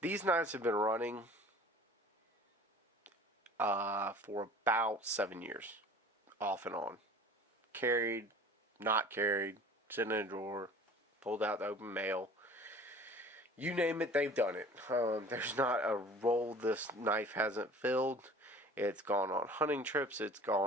These knives have been running for about 7 years, off and on. Carried, not carried, sitting in a drawer, pulled out the open mail. You name it, they've done it. There's not a roll this knife hasn't filled. It's gone on hunting trips, it's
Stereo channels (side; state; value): both; normal; correlation 0.45